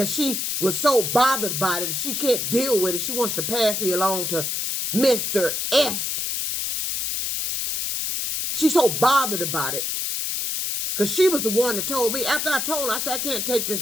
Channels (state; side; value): noise; left; hiss, 1 dB below the sound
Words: she was so bothered by it that she can't deal with it. She wants to pass me along to Mr. S. She's so bothered about it. Because she was the one that told me, after I told her, I said, I can't take